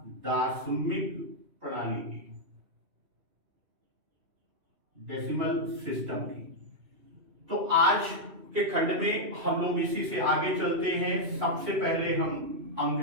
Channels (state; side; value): late; left; 2.7 ms